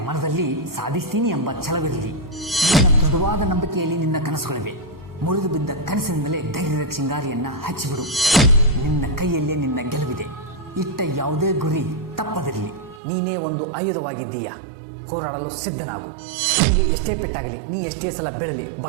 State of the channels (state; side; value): drops out; left; at 13.0 s